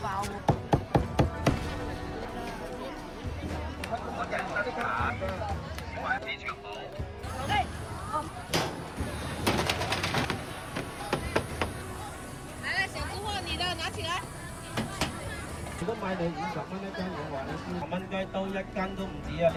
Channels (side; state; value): both; identical; correlation 1.00